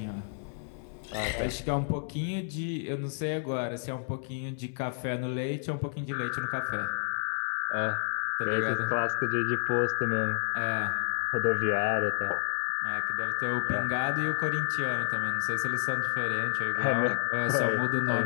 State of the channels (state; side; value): silent; right; 58 dB below the other